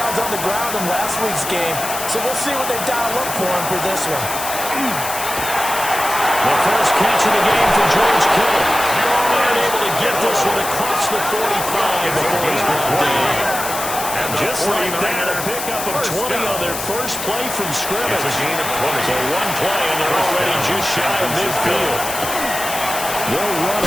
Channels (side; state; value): left; noise; hiss, 6 dB below the sound